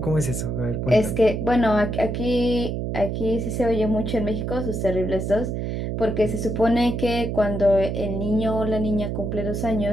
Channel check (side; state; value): right; noise; hum, 2 dB below the sound